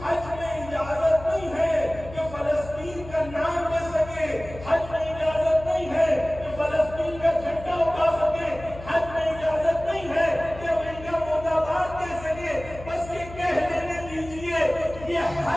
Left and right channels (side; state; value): left; noise; hum, 15 dB below the sound